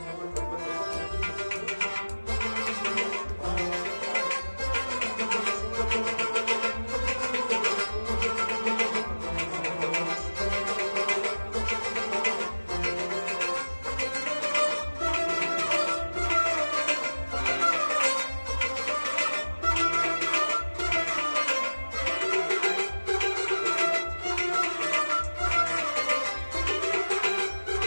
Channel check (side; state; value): both; inverted; correlation -1.00